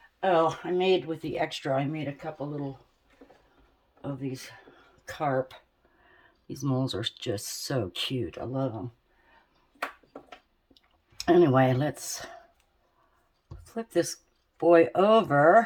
Oh, I made with the extra, I made a couple little of these carp. These molds are just so cute. I love them. Anyway, let's flip this boy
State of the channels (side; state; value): both; identical; correlation 1.00